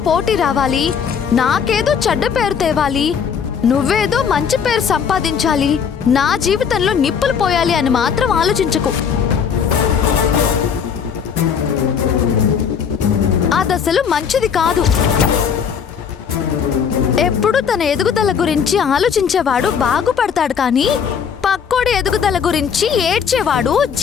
పోటీ రావాలి, నాకేదో చెడ్డ పేరు తేవాలి, నువ్వేదో మంచి పేరు సంపాదించాలి, నా జీవితంలో నిప్పులు పోయాలి అని మాత్రం ఆలోచించకు. అదసలు మంచిది కాదు. ఎప్పుడు తన ఎదుగుదల గురించి ఆలోచించేవాడు బాగుపడతాడు, కానీ పక్కోడి ఎదుగుదల గురించి ఏడ్చేవాడు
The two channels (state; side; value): quieter; right; 7.1 dB